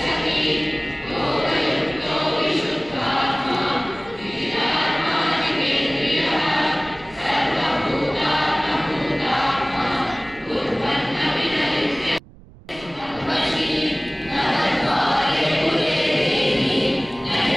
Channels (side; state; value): right; noise; rumble, 22 dB below the sound